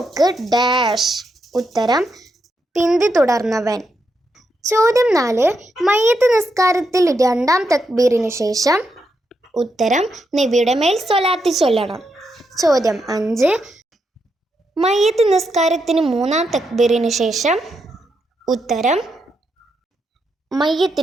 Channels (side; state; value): both; normal; correlation 0.82